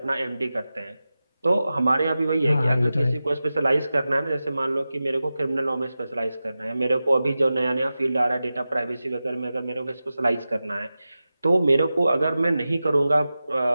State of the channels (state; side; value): inverted; both; correlation -0.94